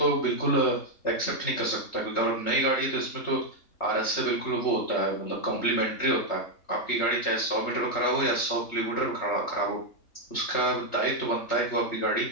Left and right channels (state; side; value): late; right; 3.3 ms